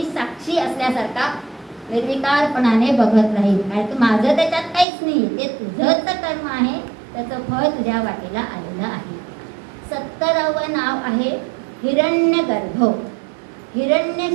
साक्षी असल्यासारखा निर्विकारपणाने बघत राहील. कारण की माझं त्याच्यात काहीच नाही, ते तुझंच कर्म आहे, त्याचं फळ तुझ्या वाटेला आलेलं आहे. 70वं नाव आहे हिरण्यगर्भ. हिरण्य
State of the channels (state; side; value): drops out; left; at 4.9 s